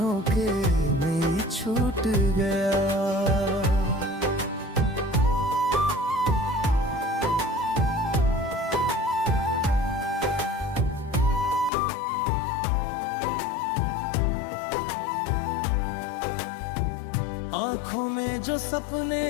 में ही छूट गया। आँखों में जो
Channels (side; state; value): right; drops out; at 11.7 s